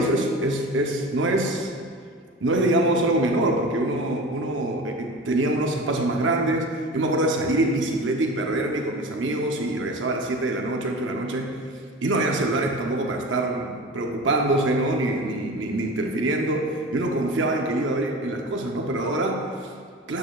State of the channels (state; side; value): normal; both; correlation 0.33